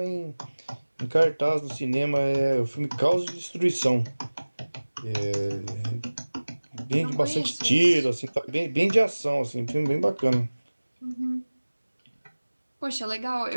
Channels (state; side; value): inverted; both; correlation -1.00